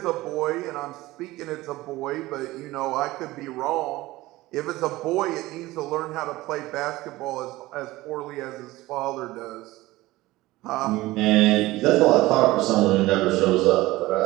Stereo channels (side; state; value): left; quieter; 18.5 dB